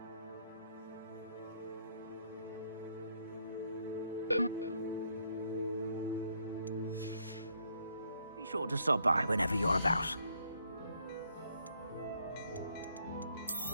Be sure to stop by whenever you're about.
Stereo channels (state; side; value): inverted; both; correlation -0.71